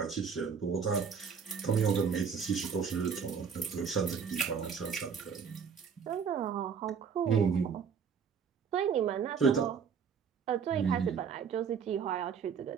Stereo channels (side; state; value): left; quieter; 6.5 dB